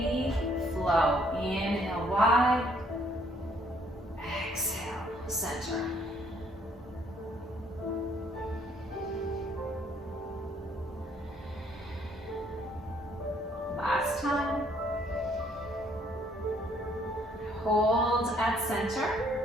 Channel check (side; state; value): both; normal; correlation 0.65